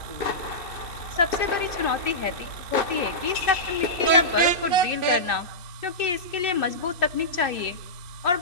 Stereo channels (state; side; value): late; right; 2.8 ms